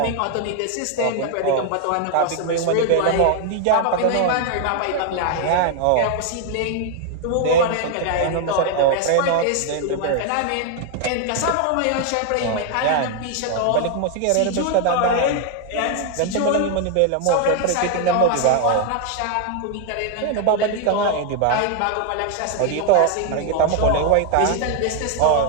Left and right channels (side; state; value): both; different; correlation 0.00